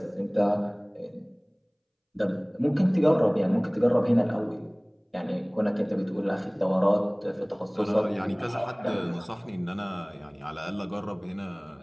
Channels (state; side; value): identical; both; correlation 1.00